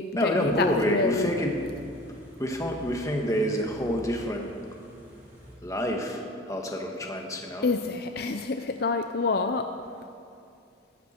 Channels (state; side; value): normal; both; correlation 0.35